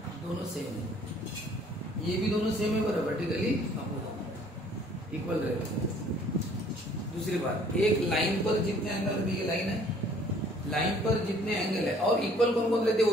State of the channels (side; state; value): both; normal; correlation 0.57